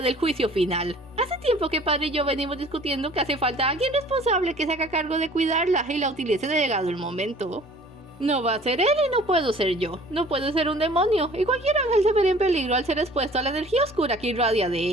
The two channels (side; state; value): both; normal; correlation 0.50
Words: juicio final. Hace tiempo que padre y yo venimos discutiendo que hace falta alguien responsable que se haga cargo de cuidarla y la utilice de llegado el momento. No va a ser él y no puedo ser yo. No puedo ser un demonio, y cualquier ángel se vería en peligro al ser expuesto a la energía oscura que irradia de